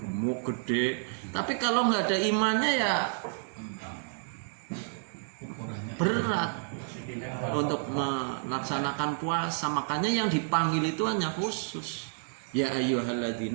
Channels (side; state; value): left; silent; digital silence